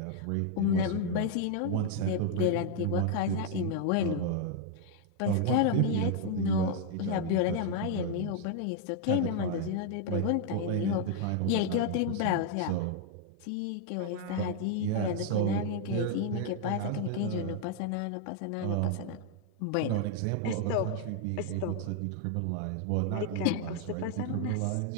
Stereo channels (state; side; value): different; both; correlation 0.00